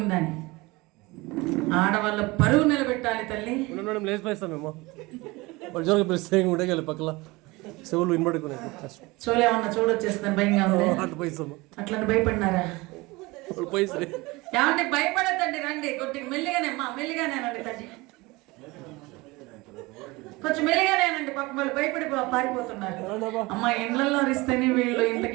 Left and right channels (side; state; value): left; quieter; 22.8 dB